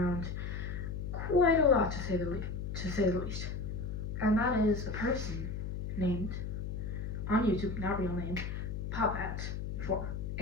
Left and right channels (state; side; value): noise; left; hum, 4 dB below the sound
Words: quite a lot, to say the least. And that is a person named, on YouTube, not real name, Popat4.